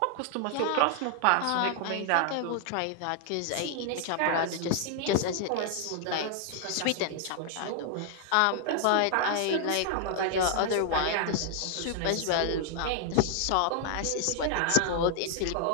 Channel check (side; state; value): both; different; correlation 0.00